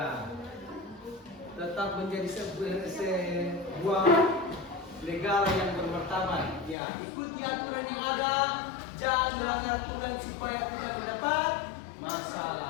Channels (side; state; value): right; drops out; at 6.8 s